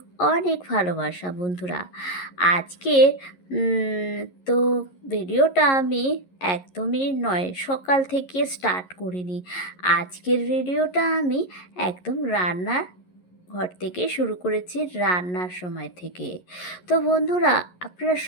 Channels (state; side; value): late; right; 11 ms